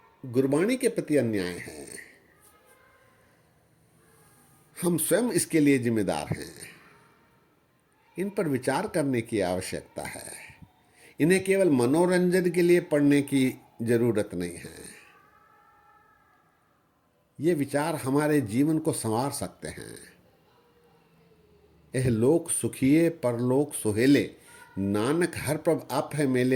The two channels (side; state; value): both; identical; correlation 1.00